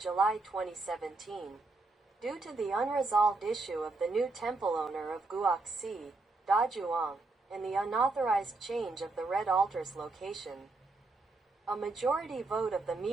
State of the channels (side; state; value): left; quieter; 3.4 dB